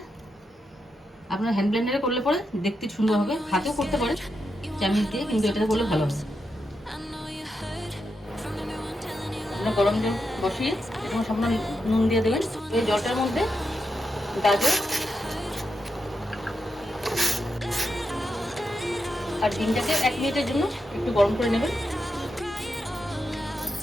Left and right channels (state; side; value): normal; both; correlation 0.85